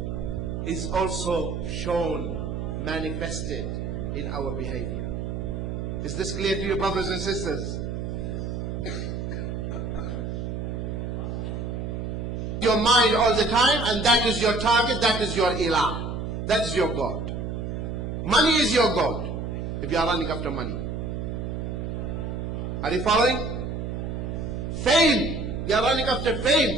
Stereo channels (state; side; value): noise; right; hum, 4 dB below the sound